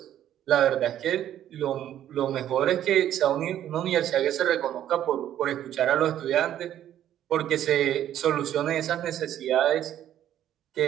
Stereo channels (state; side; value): quieter; left; 11.3 dB